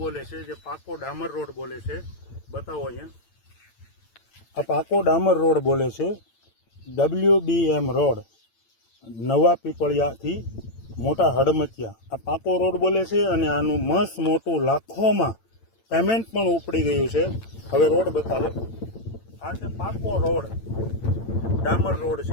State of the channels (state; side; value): late; right; 8.9 ms